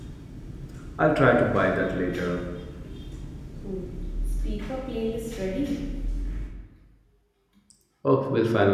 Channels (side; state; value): both; identical; correlation 1.00